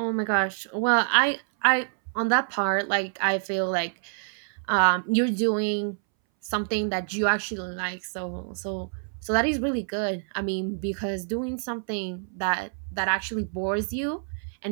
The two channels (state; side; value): silent; left; 60 dB below the other